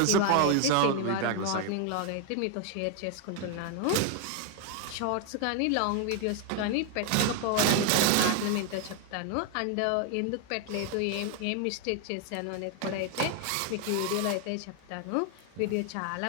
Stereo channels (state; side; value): different; both; correlation 0.00